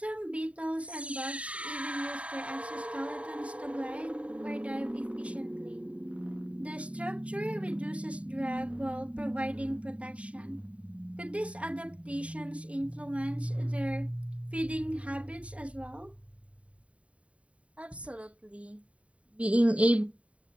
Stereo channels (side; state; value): left; late; 0.064 ms